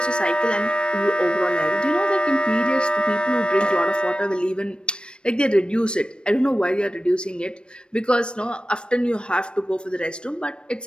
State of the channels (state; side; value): late; right; 0.055 ms